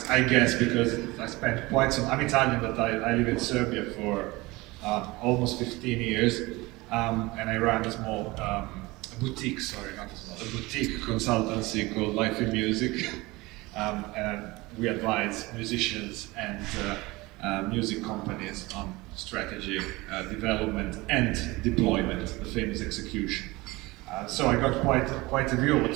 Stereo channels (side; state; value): left; quieter; 21.8 dB